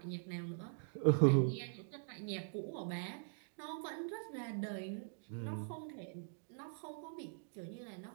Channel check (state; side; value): silent; left; digital silence